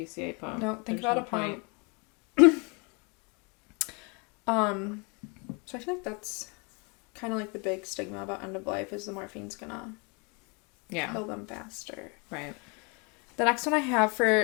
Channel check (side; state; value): right; quieter; 31.7 dB